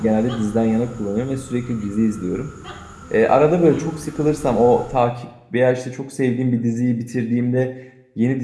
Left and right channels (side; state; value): both; identical; correlation 1.00